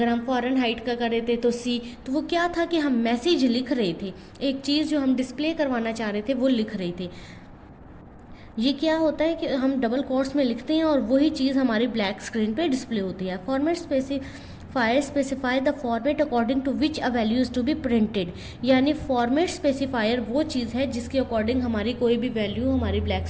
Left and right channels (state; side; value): identical; both; correlation 1.00